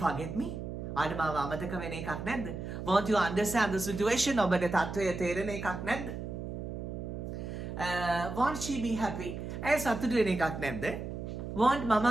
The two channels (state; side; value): noise; right; hum, 6 dB below the sound